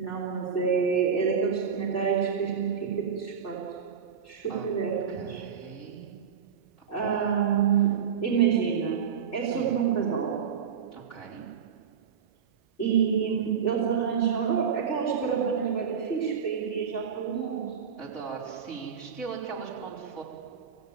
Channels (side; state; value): left; quieter; 7.2 dB